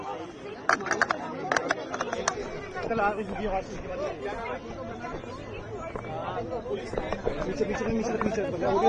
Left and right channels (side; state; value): both; identical; correlation 1.00